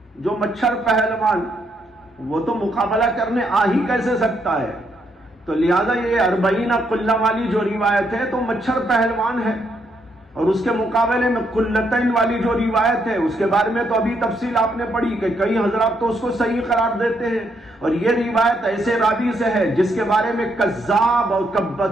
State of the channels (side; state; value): both; normal; correlation 0.75